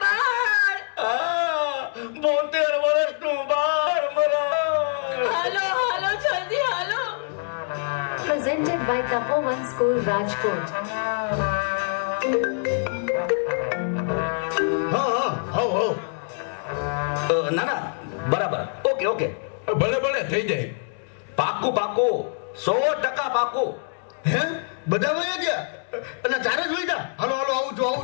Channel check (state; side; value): silent; right; digital silence